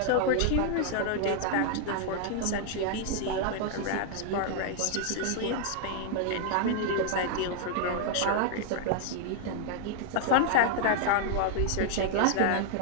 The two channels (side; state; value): both; different; correlation 0.00